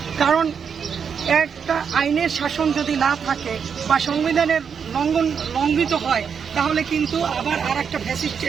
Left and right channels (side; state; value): left; quieter; 6.8 dB